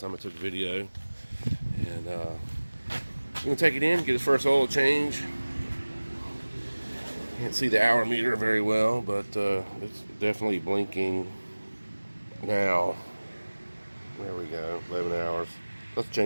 I took a video, and we're gonna take it in, get his first oil change. Can't see the hour meter very well, but it's definitely blinking now. There we go, 11 hours. Let's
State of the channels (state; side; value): inverted; both; correlation -1.00